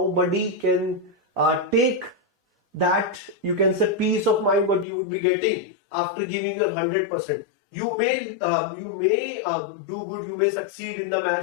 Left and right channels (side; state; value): right; drops out; at 4.9 s